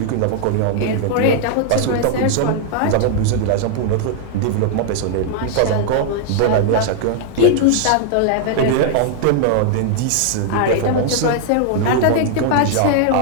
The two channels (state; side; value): different; both; correlation -0.01